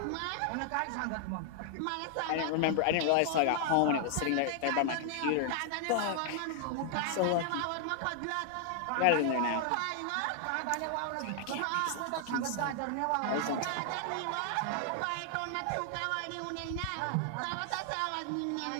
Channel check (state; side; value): different; both; correlation 0.00